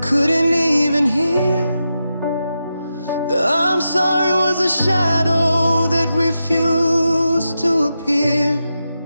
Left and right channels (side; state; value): both; inverted; correlation -0.88